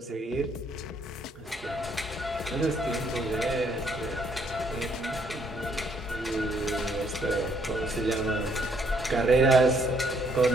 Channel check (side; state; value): both; normal; correlation 0.68